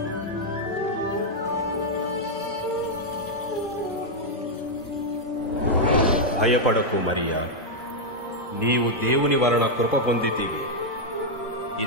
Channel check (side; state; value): both; normal; correlation -0.02